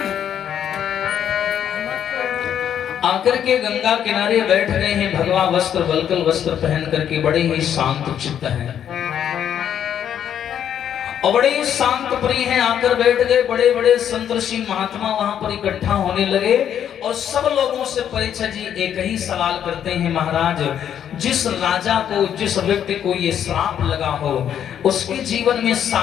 आकर के गंगा किनारे बैठ गए हैं। भगवा वस्त्र वल्कल वस्त्र पहन करके बड़े ही शांत चित्त हैं और बड़े ही शांत प्रिय हैं। आकर बैठ गए। बड़े बड़े संत ऋषि महात्मा वहां पर इकट्ठा होने लगे और सब लोगों से परीक्षित जी एक ही सवाल करते हैं, महाराज जिस राजा को, जिस व्यक्ति को ये श्राप लगा हो, उसके जीवन में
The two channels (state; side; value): quieter; right; 9.5 dB